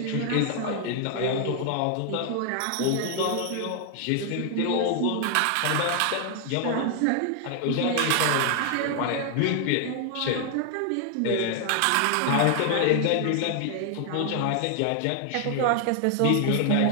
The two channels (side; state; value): both; different; correlation 0.00